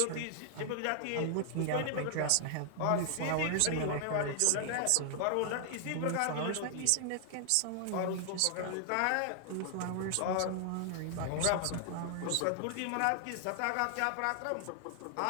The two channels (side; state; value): both; different; correlation 0.00